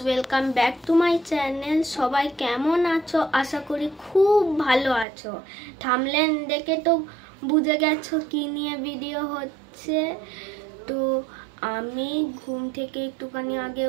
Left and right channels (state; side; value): drops out; left; at 5.1 s